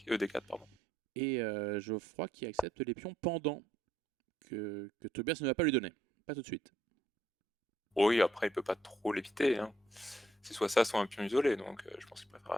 pardon. Et Geoffroy qui accepte les pions pendant que Tobias ne va pas lui donner. Pas tout de suite. Oui, après, il peut pas trop l'éviter. Hein. C'est soit ça, soit un pion isolé, donc je pense qu'il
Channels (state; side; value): normal; both; correlation 0.71